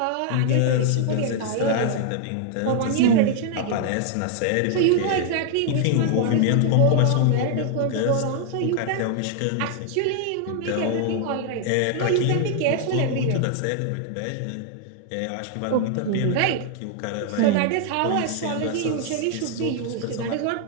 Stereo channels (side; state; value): both; different; correlation 0.00